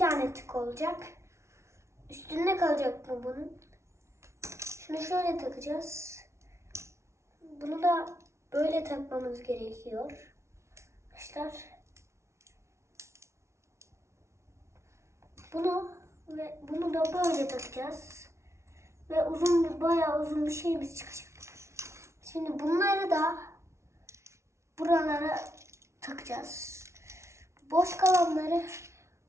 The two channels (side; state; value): left; late; 0.13 ms